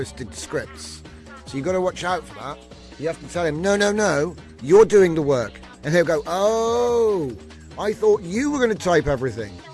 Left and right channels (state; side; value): identical; both; correlation 1.00